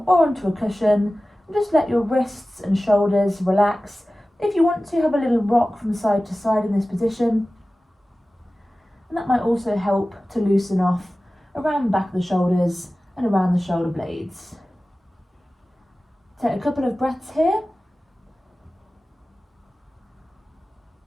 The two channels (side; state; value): both; normal; correlation 0.96